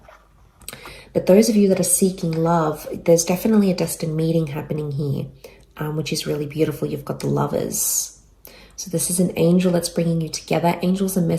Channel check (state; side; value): identical; both; correlation 1.00